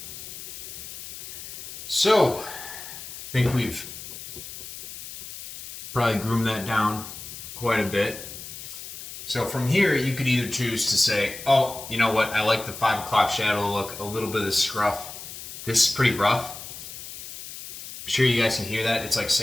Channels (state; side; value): noise; left; hiss, 11 dB below the sound